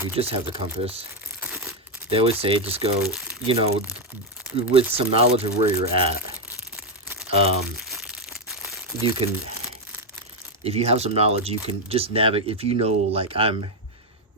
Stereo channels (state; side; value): normal; both; correlation 0.03